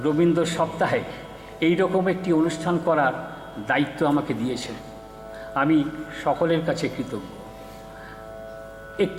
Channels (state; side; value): identical; both; correlation 1.00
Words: রবীন্দ্র সপ্তাহে এই রকম একটি অনুষ্ঠান করার দায়িত্ব আমাকে দিয়েছে। আমি সকলের কাছে কৃতজ্ঞ।